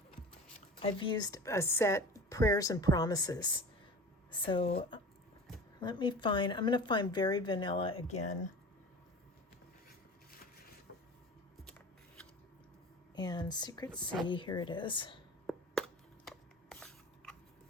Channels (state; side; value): normal; both; correlation 0.36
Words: I've used a set, Prayers and Promises. So let me find, I'm going to find Very Vanilla again. And Secret C, here it is.